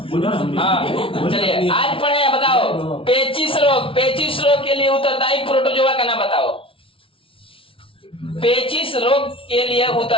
हाँ, चलिए, आज पढ़े हैं, बताओ। पेचिश रोग। पेचिश रोग के लिए उत्तरदायी प्रोटोजोआ का नाम बताओ। पेचिश रोग के लिए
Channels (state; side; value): late; right; 0.26 ms